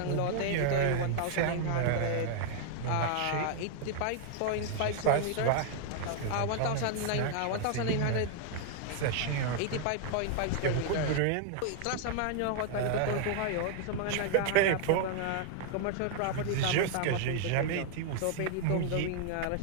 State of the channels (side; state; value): both; different; correlation 0.00